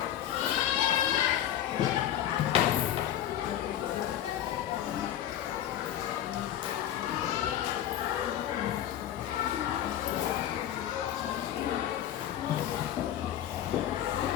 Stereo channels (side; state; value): right; quieter; 11.5 dB